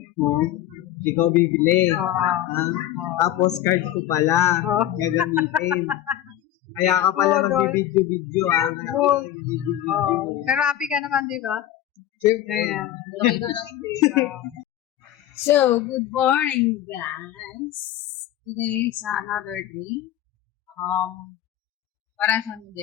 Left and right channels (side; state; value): right; quieter; 12.4 dB